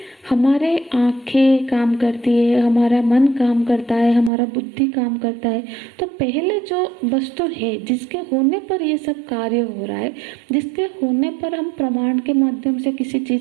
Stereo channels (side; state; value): left; drops out; at 4.3 s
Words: हमारे आंखें काम करती है, हमारा मन काम करता है, हमारा बुद्धि काम करता है। तो पहले जो वस्तु है जिसके होने पर ये सब कार्य हो रहा है, जिसके होने पर हम प्रमाण के माध्यम से किसी